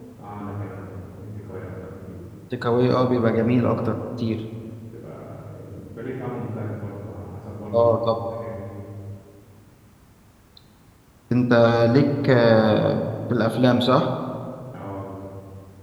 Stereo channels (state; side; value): identical; both; correlation 1.00